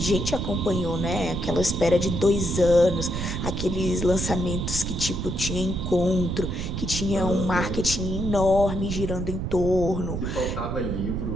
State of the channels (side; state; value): right; noise; rumble, 4 dB below the sound